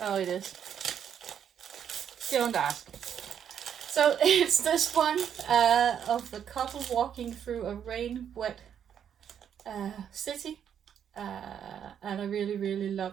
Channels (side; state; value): left; quieter; 8.7 dB